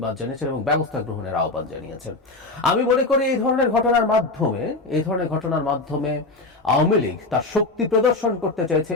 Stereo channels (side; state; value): right; quieter; 3.2 dB